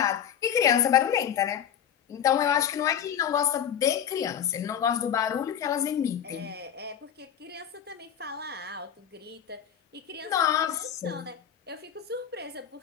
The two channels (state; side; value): quieter; right; 9.1 dB